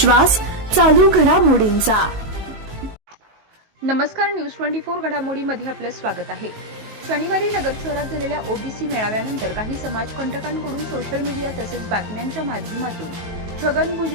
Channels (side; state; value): left; late; 19 ms